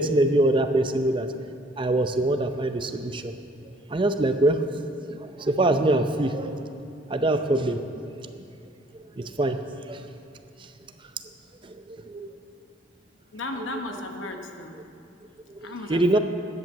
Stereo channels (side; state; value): both; normal; correlation 0.59